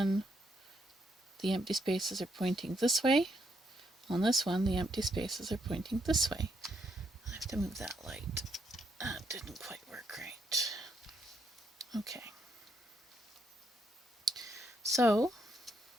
the empty spaces are pointing this way. On this one, the empty spaces are pointing this way. I have to move that light. That didn't quite work right. Okay. So,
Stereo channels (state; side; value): normal; both; correlation 0.77